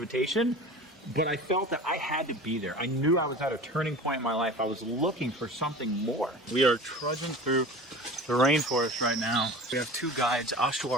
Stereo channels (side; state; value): both; normal; correlation 0.36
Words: but I felt that I had to be there. I knew I was at a turning point in my life. I was looking for something more. We are trudging through the rainforest right now. We have two guides,